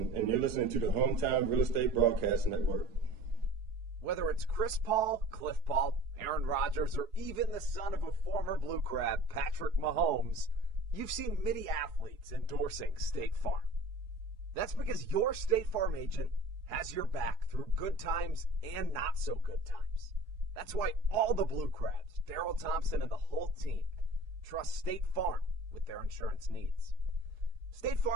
and you're listening to the Hometown Real Estate Broadcast Network. Whether it's Chris Paul, Cliff Paul, Aaron Rodgers, or even the son of a former Blue Crab, Patrick Mahomes, you've seen many athletes endorsing State Farm. That's because your State Farm agent has your back through good times and not so good times. That's why all the Blue Crabs, Daryl Thompson and the whole team, trust State Farm with their insurance needs. State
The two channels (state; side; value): late; left; 4.8 ms